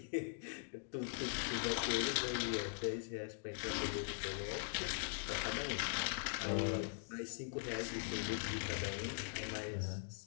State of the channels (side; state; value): right; silent; digital silence